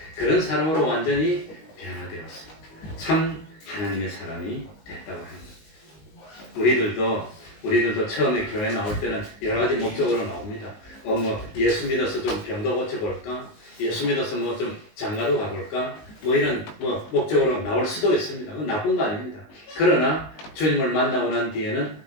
그런 사람으로 완전히 변화되었어. 참 하나님의 사람이 됐다고 합니다. 우리들도 처음에 교회 나올 때는 여러 가지 목적으로 나옵니다. 예수 믿어서 좀 병도 고쳐볼까? 예수 믿어서 좀 장가도 가볼까? 이런 목적으로 나올 수도 있습니다. 그건 나쁜 거 아닙니다. 그러나 주님을 만나고 난 뒤에는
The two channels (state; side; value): late; right; 19 ms